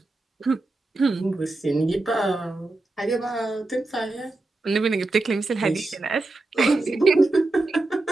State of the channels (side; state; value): left; quieter; 3.0 dB